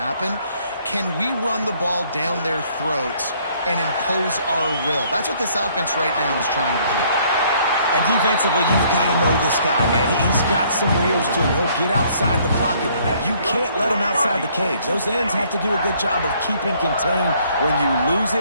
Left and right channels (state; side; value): inverted; both; correlation -0.63